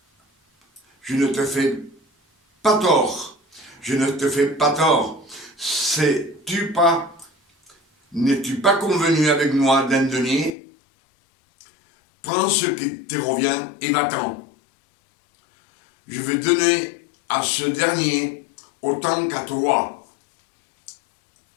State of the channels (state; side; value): drops out; right; at 10.5 s